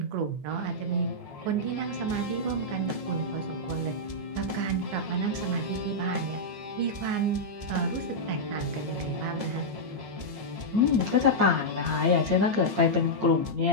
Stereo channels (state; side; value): late; left; 14 ms